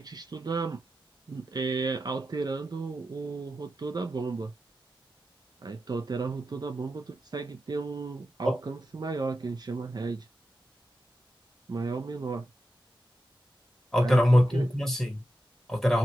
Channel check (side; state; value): both; normal; correlation 0.90